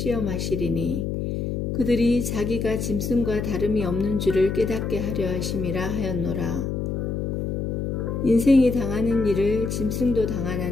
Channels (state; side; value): noise; left; hum, 2 dB below the sound